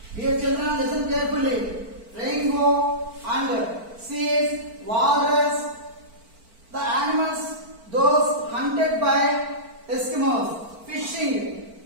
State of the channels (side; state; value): left; late; 4.5 ms